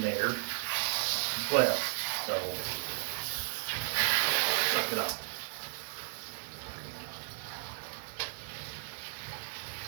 there as well, so suck it up.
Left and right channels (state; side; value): silent; left; digital silence